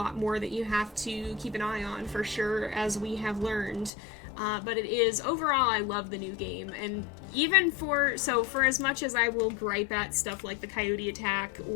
more that you have to keep an eye on for sure, as we have learned. But it is, overall, I love the new game, and even for as much as I will gripe at stuff like the coyote attack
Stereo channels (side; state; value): right; drops out; at 3.9 s